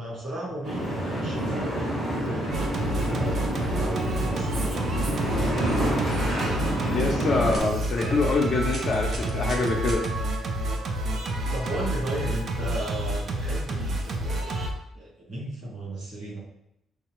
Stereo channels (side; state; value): both; normal; correlation 0.71